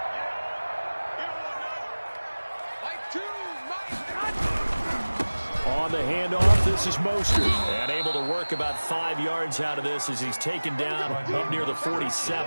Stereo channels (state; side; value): inverted; both; correlation -1.00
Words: On the handoff, this is Mostert. And able to work about 5 yards out of this as he's taken down up near the